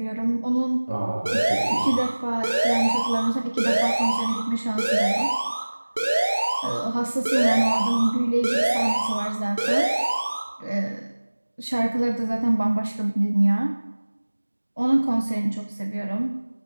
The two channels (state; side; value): inverted; both; correlation -1.00